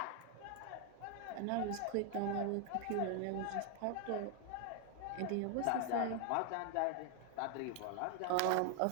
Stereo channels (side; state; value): both; different; correlation 0.00